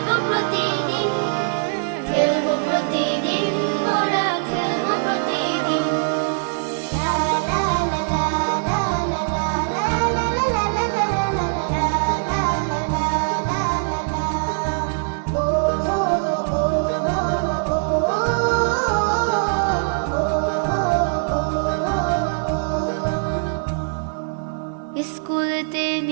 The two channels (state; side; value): silent; left; digital silence